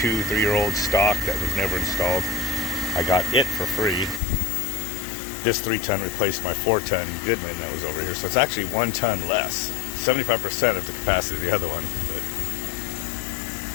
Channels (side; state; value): right; drops out; at 4.2 s